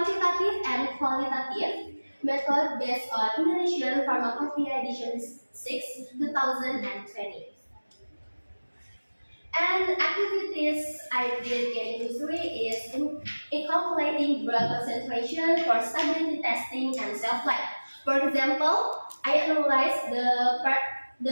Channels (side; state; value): both; inverted; correlation -1.00